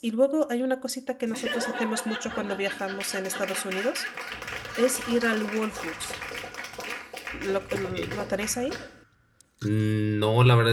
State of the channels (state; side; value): identical; both; correlation 1.00